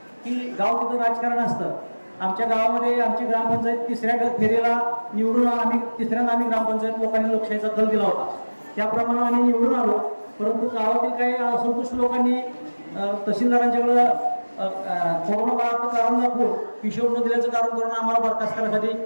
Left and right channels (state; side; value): inverted; both; correlation -1.00